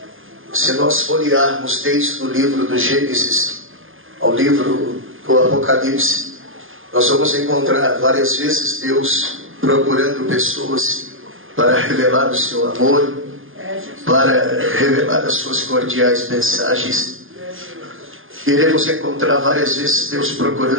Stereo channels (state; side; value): late; left; 0.59 ms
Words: Se nós folhearmos desde o livro do Gênesis ao livro do Apocalipse, nós vamos encontrar várias vezes Deus procurando pessoas para revelar o seu amor, para revelar as suas cordiais mensagens. Iremos encontrar várias vezes Deus